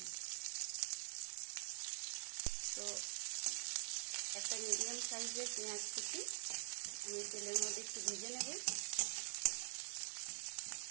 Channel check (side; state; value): left; silent; digital silence